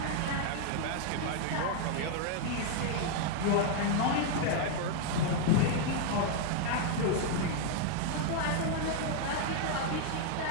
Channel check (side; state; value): both; different; correlation 0.00